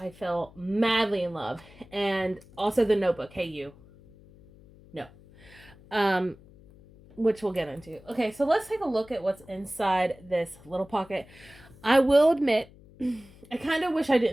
fell madly in love. And also the notebook. Hey, you. No. Which we'll get into. Okay, so let's take a look at what's inside this little pocket. I will admit, I kind of wish I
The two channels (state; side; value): noise; left; hum, 24 dB below the sound